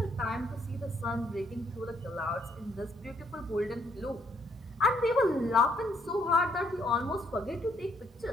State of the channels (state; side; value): normal; both; correlation 0.70